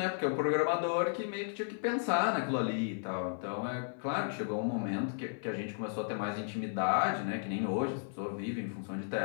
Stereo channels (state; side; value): silent; right; digital silence